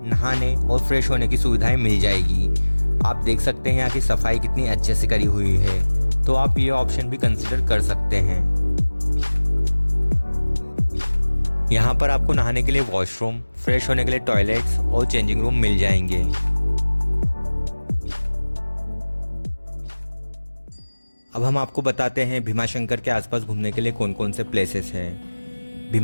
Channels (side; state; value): both; inverted; correlation -1.00